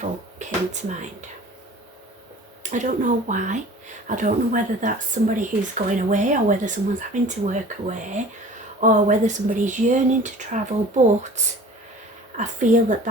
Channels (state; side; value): normal; both; correlation 0.44